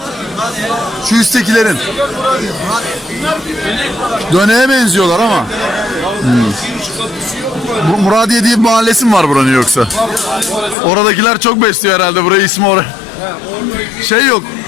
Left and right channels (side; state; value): right; drops out; at 10.8 s